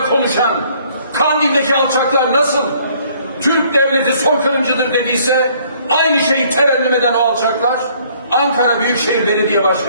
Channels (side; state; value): both; inverted; correlation -0.61